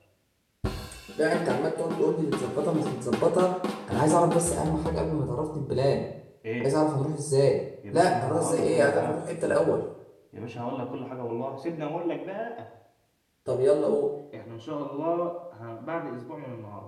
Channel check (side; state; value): both; identical; correlation 1.00